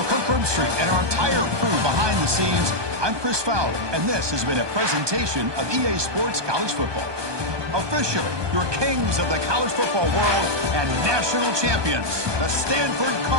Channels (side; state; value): left; late; 1.2 ms